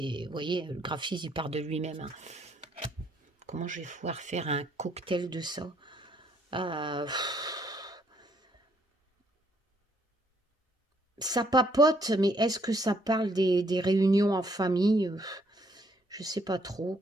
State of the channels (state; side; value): normal; both; correlation 0.68